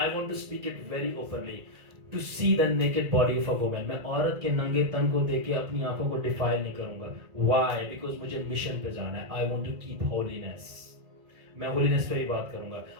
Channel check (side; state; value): left; late; 1.9 ms